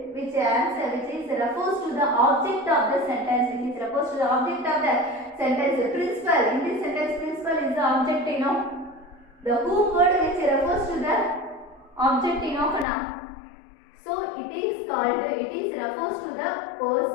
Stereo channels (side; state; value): right; drops out; at 12.9 s